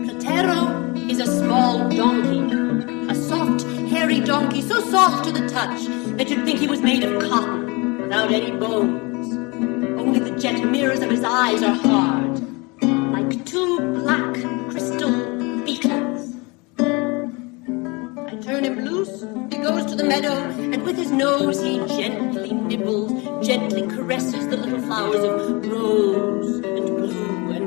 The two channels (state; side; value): quieter; right; 27.1 dB